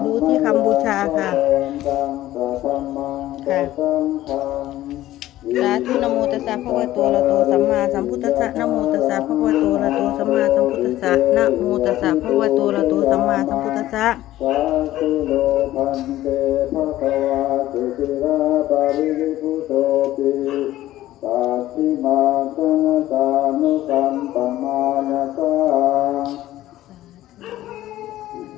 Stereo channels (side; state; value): right; quieter; 14.7 dB